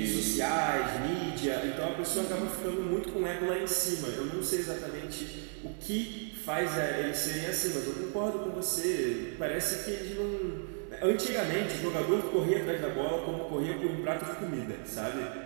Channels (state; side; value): silent; left; 56 dB below the other